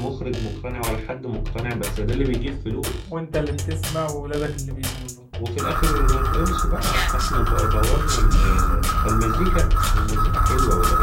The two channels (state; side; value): identical; both; correlation 1.00